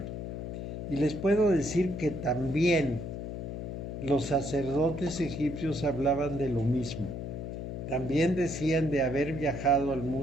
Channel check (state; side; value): noise; left; hum, 6 dB below the sound